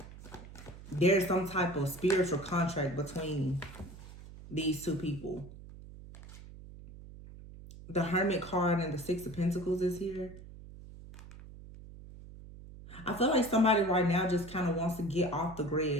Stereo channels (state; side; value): noise; right; hum, 16 dB below the sound